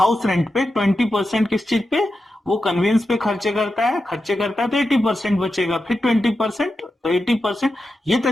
रेंट पे, 20% किस चीज पे, वो कन्वीनियंस पे खर्चे करता है तो 80% बचेगा, फिर 20% तो 80%। ये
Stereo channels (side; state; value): both; normal; correlation 0.90